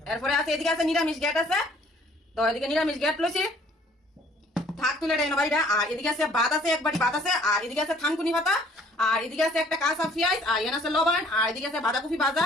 এরপরে আছে এদিকে আছে নিরামিষ গ্যাট আছে। তো এদিকে নিরামিষ গ্যাট লইছি, থাক তুলে দেয় বাড়িটা। আর এদিকে আছে ভাত আছে, এক বাটি ভাত আছে। আর এদিকে আছে থানকুনি পাতা, আর এদিকে আছে একটা কাঁচা পেঁয়াজ, আর এখানে আছে লবণ, আর এদিকে আছে বাঁধাকপি ভাজা,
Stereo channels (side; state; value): both; normal; correlation 0.58